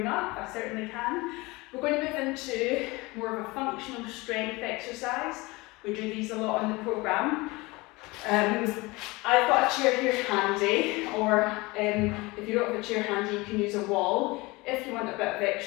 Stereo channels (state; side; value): quieter; right; 23.1 dB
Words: up. I certainly can. We're going to move into more of a functional strength exercise. We do these a lot on the programme. I've got a chair here handy, or if you don't have a chair handy, you can use a wall if you want a bit of